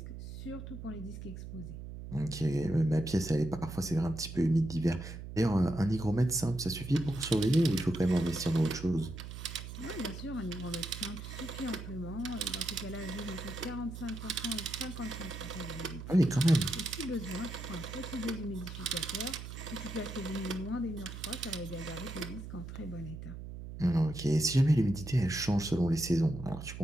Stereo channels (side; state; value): right; noise; hum, 10 dB below the sound